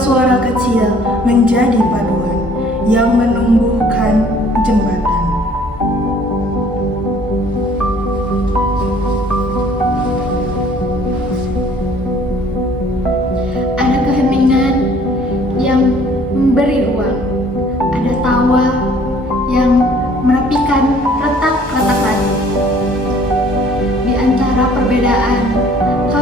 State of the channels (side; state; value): both; normal; correlation 0.56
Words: kecil menjadi paduan yang menumbuhkan jembatan. Ada keheningan yang memberi ruang. Ada tawa yang menepikan retak-retak hati. Di antara perbedaan,